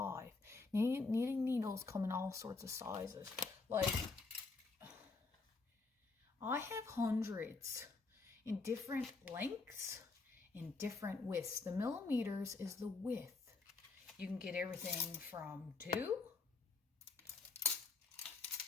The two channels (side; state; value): right; quieter; 4.0 dB